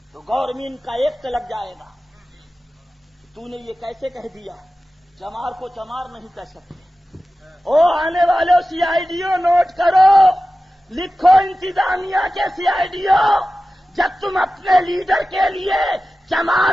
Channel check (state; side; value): normal; both; correlation 0.95